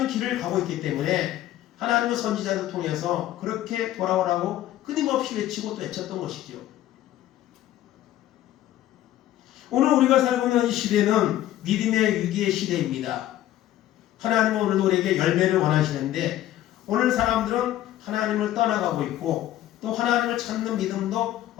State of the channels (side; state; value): right; quieter; 13.5 dB